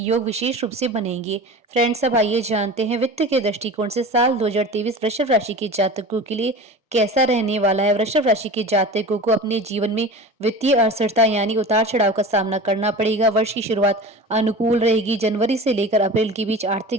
विशेष रूप से बनेंगे। फ्रेंड्स, अब आइए जानते हैं वित्त के दृष्टिकोण से साल 2023 वृषभ राशि के जातकों के लिए कैसा रहने वाला है। वृषभ राशि के जातकों को अपने जीवन में वित्तीय अस्थिरता यानी उतार चढ़ाव का सामना करना पड़ेगा। वर्ष की शुरुआत अनुकूल रहेगी। जनवरी से लेकर अप्रैल के बीच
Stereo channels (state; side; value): normal; both; correlation 0.34